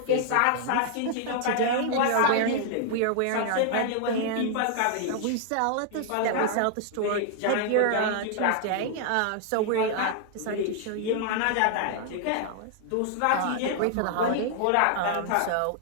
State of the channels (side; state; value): both; different; correlation 0.00